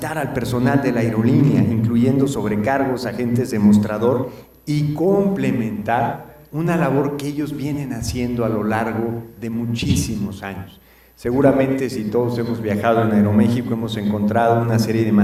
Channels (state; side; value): identical; both; correlation 1.00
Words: al personal de la aerolínea, incluyendo sobrecargos, agentes de mostrador, y complementar una labor que ellos vienen haciendo a lo largo de muchísimos años. Seguramente si todos hemos viajado en Aeroméxico hemos encontrado una serie de